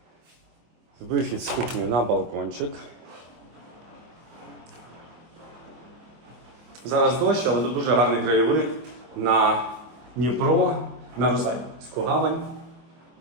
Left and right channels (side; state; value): left; late; 24 ms